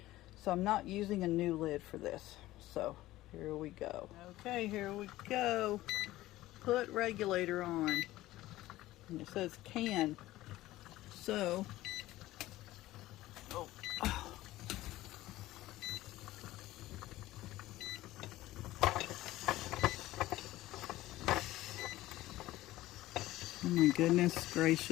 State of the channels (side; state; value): right; quieter; 16.4 dB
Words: So I'm not using a new lid for this. So here we go. Okay, here we go. Put regulator on. And it says can. So, oh my goodness